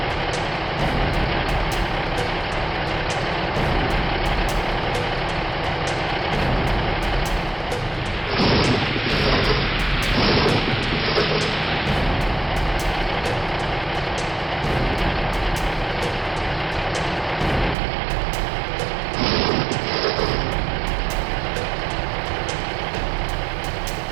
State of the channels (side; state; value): left; drops out; at 17.8 s